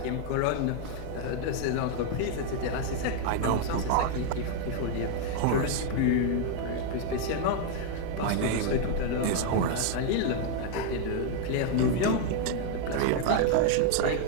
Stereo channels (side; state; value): both; different; correlation 0.00